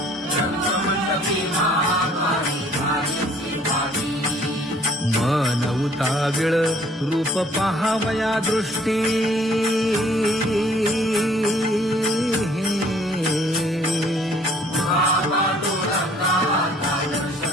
मन उताविळ रूप पाहावया दृष्टी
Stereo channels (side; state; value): both; normal; correlation 0.59